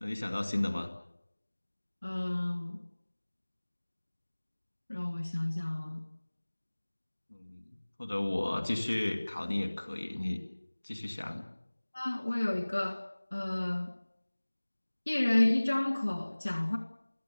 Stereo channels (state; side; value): inverted; both; correlation -1.00